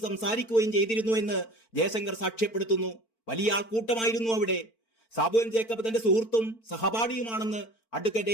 സംസാരിക്കുകയും ചെയ്തിരുന്നു എന്ന് ജയശങ്കർ സാക്ഷ്യപ്പെടുത്തുന്നു. വലിയ ആൾക്കൂട്ടമായിരുന്നു അവിടെ. സാബു എം ജേക്കബ് തന്റെ സുഹൃത്തും സഹപാഠിയുമാണെന്ന്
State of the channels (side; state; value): right; late; 4.5 ms